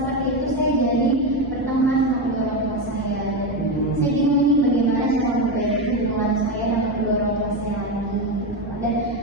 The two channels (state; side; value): normal; both; correlation 0.13